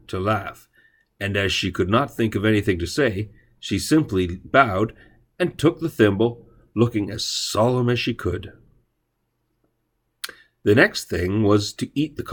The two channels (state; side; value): identical; both; correlation 1.00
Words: to laugh, and as she could not think of anything to say, she simply bowed and took the thimble, looking as solemn as she could. The next thing was to eat the